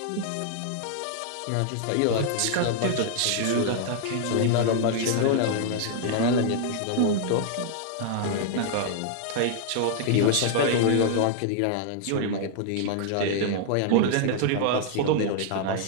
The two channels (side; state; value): both; different; correlation -0.01